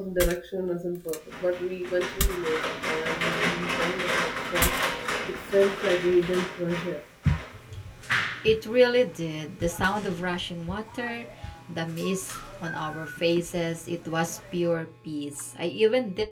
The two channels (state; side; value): identical; both; correlation 1.00